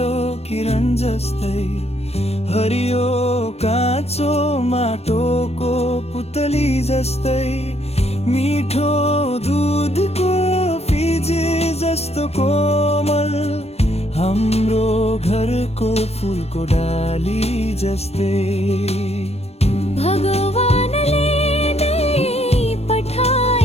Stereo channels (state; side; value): late; right; 0.30 ms